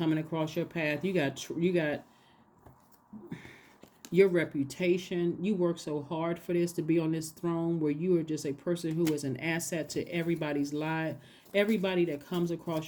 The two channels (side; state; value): both; identical; correlation 1.00